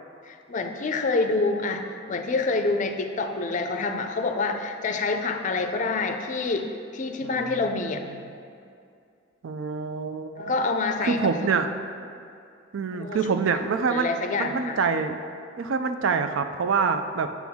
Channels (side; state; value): both; normal; correlation 0.08